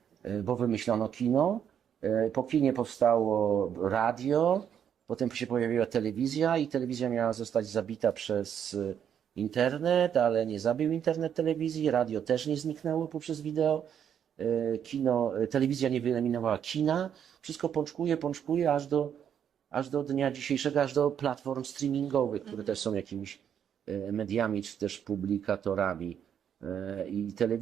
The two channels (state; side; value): quieter; left; 8.7 dB